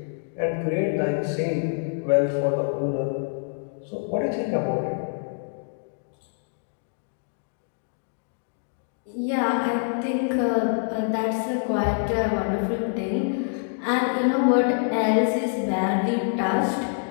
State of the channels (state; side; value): silent; right; digital silence